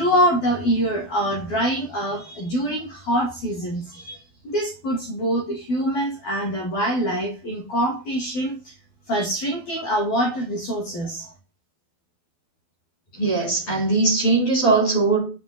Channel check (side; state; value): right; late; 12 ms